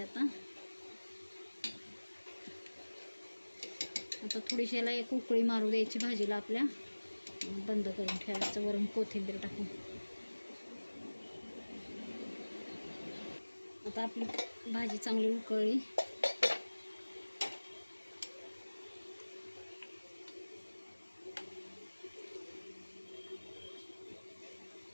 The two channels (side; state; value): both; inverted; correlation -1.00